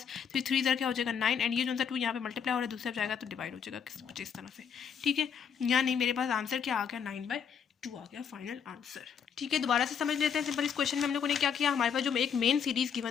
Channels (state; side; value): quieter; right; 7.3 dB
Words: 3 3 क्या हो जाएगा 9, एंड ये जो सा 2 यहाँ पे मल्टीप्लाई हो रहा है दूसरे जाएगा तो डिवाइड हो जाएगा कुछ इस तरह से, ठीक है। यानी मेरे पास आंसर क्या आ गया 9/2 आ गया फाइनल आंसर, ठीक है। दोबारा से समझ लेते हैं सिंपल। इस क्वेश्चन में हम लोगों ने क्या किया, हमारे पास जो एक मेन सीरीज